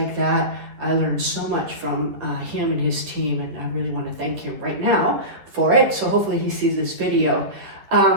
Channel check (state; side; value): late; left; 10 ms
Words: that. I learned so much from him and his team, and I really want to thank him right now for it. So hopefully he sees this video.